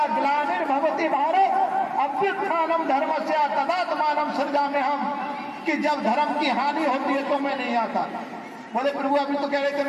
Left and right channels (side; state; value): both; identical; correlation 1.00